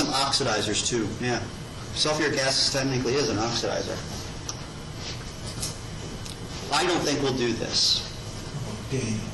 oxidizers too, yeah. Sulfuric acid technically is an oxidizer. I don't think we'll do this. Okay.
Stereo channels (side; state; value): both; identical; correlation 1.00